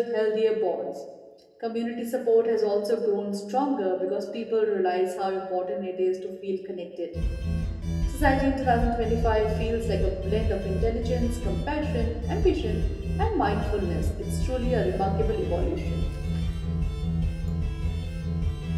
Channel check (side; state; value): both; identical; correlation 1.00